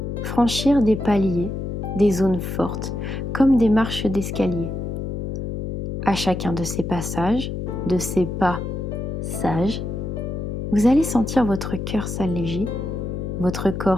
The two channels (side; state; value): left; noise; hum, 4 dB below the sound